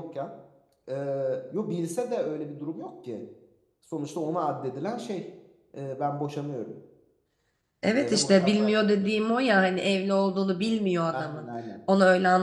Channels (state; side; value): identical; both; correlation 1.00